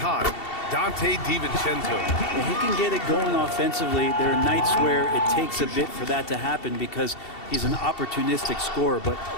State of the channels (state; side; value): late; right; 2.7 ms